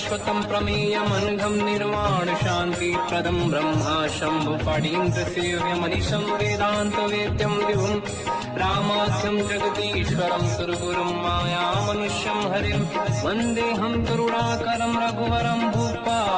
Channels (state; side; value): identical; both; correlation 1.00